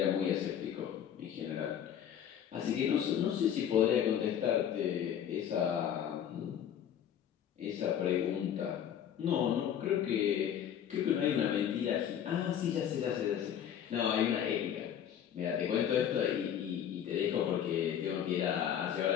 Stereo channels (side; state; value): right; quieter; 9.5 dB